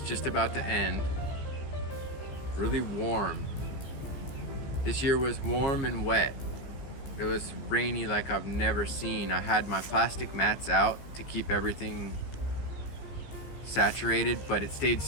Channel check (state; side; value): late; right; 15 ms